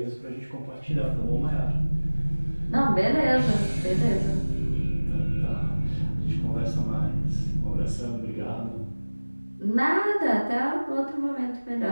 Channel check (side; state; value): both; inverted; correlation -1.00